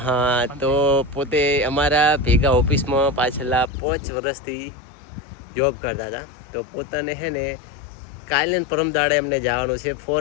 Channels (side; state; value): right; drops out; at 3.7 s